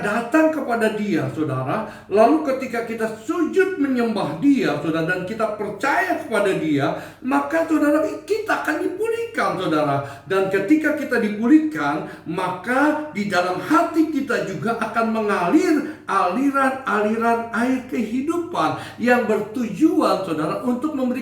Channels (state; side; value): identical; both; correlation 1.00